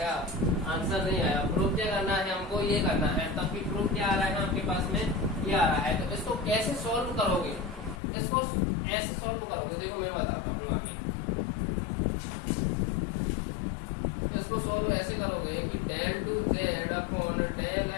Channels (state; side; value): drops out; right; at 8.0 s